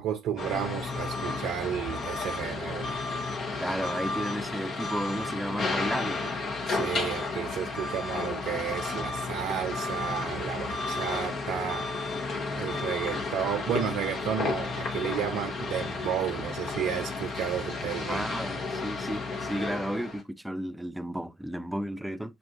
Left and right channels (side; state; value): both; normal; correlation 0.65